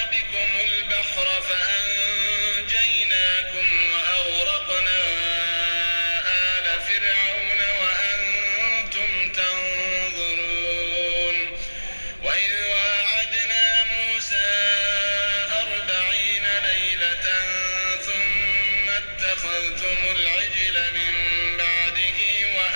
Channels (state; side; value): inverted; both; correlation -1.00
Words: بكم البحر فأنجيناكم وأغرقنا آل فرعون وأنتم تنظرون. وإذ واعدنا موسى 40 ليلة ثم اتخذتم العجل من بعده